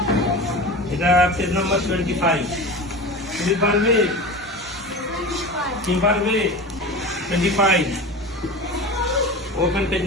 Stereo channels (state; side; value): normal; both; correlation 0.30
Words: এটা পেজ নাম্বার 25। তুমি পারবে? তুমি পারবে? 25। Open page